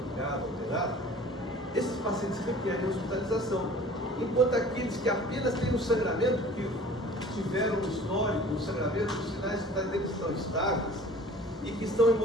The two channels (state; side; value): normal; both; correlation 0.46